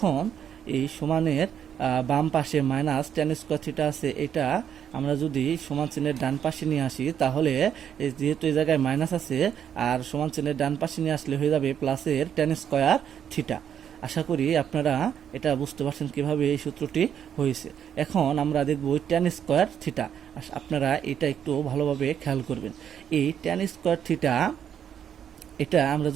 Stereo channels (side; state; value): left; quieter; 8.9 dB